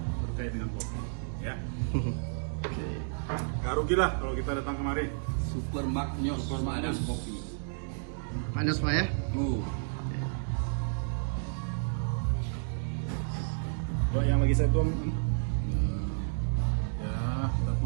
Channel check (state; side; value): silent; left; digital silence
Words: terkait dengan kopi. Ya. Oke. Gak rugi lah kalau kita datang kemari. Super Magnos Seladang Kopi. Panas Pak ya? Coba yang lagi saya tuang. Ya, kita